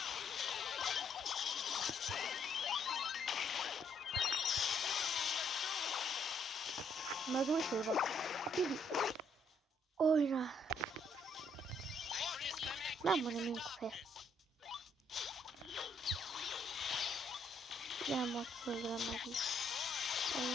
Mecbur şey bak. Oyna. Ben bunu mümkün. Ben bak söyleyemem.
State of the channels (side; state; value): both; normal; correlation 0.70